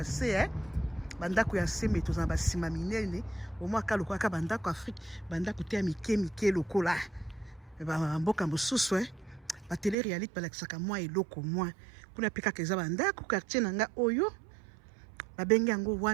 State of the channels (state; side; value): drops out; left; at 10.0 s